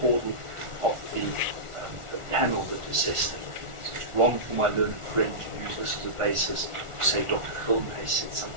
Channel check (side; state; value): left; late; 1.4 ms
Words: of the panel that assessed it. So it's wrong for my learned friend to use this as a basis to say Dr. Gildenhuys said